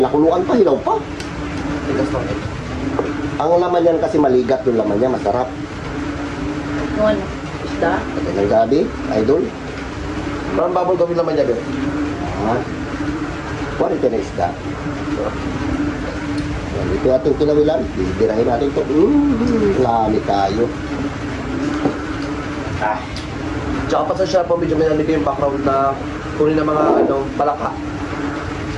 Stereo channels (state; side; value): identical; both; correlation 1.00